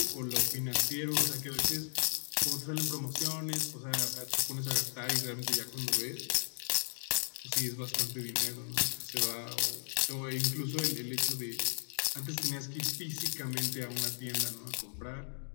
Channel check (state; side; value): silent; right; digital silence